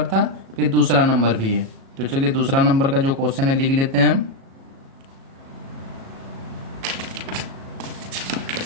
था, फिर दूसरा नंबर भी है। तो चलिए दूसरा नंबर का जो क्वेश्चन है लिख लेते हैं।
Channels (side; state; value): left; late; 37 ms